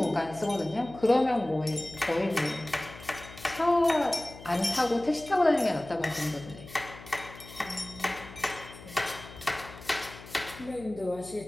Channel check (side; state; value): left; noise; hum, 17 dB below the sound